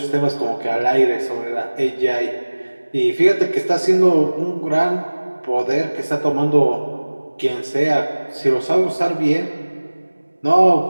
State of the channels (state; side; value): inverted; both; correlation -1.00